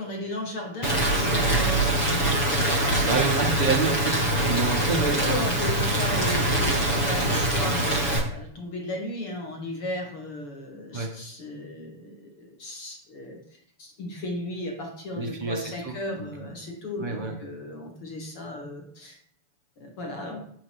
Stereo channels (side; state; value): right; late; 7.0 ms